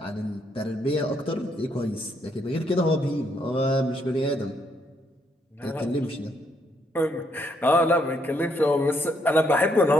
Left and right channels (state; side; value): normal; both; correlation 0.73